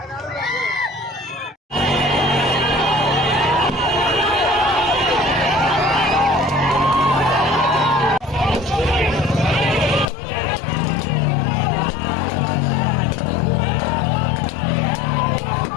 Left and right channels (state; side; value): drops out; right; at 10.1 s